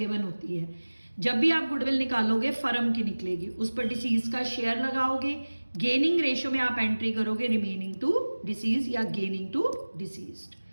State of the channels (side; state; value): both; inverted; correlation -1.00